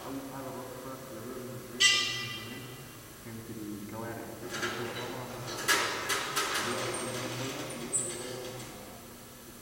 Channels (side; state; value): both; identical; correlation 1.00